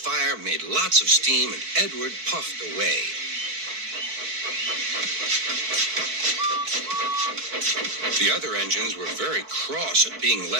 made lots of steam, and Edward puffed away. The other engines were very cross at being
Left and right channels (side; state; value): left; late; 4.5 ms